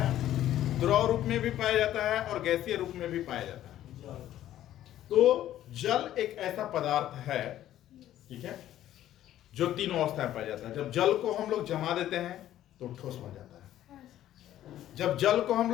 द्रव रूप में भी पाया जाता है और गैसीय रूप में भी पाया जाता है। तो जल एक ऐसा पदार्थ है, ठीक है, जो तीनों अवस्थाएं पाया जाता है। जब जल को हम लोग जमा देते हैं तो ठोस बन जाता है। जब जल को हम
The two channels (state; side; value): quieter; right; 12.6 dB